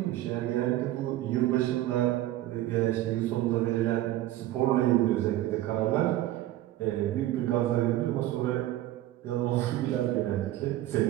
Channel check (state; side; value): quieter; left; 14.8 dB